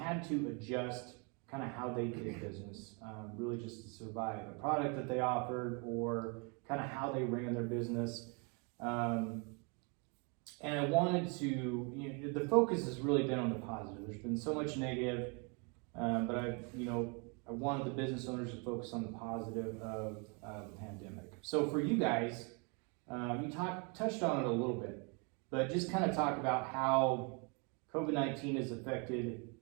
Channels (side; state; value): left; quieter; 33.8 dB